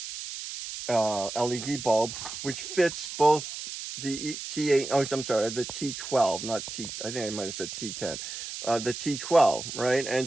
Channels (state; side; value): noise; right; hiss, 8 dB below the sound